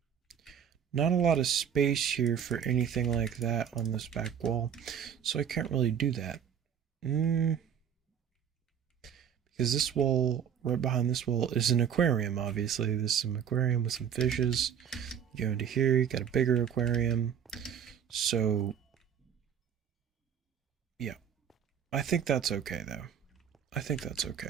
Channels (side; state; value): left; quieter; 8.3 dB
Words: Not a lot of space here for anything like that on this back wall. So I can't really do that. Because this wall, right behind this wall, is an aquarium, obviously. This is an aquarium with some fishes. You go into here, you got a bigger aquarium. So, yeah. I think that's okay, though. I think that's